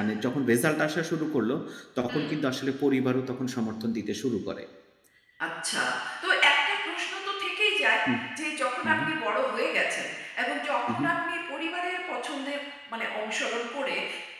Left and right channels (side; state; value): both; identical; correlation 1.00